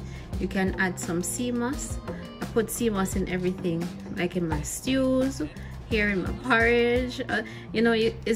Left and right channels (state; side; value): identical; both; correlation 1.00